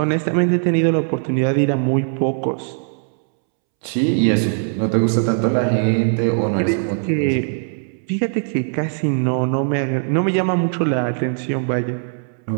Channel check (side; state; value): left; silent; 66 dB below the other